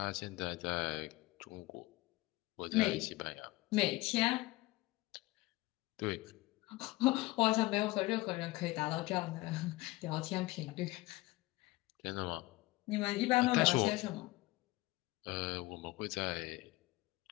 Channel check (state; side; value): quieter; right; 20.5 dB